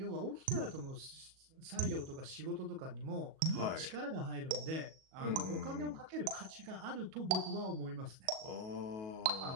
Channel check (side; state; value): left; late; 37 ms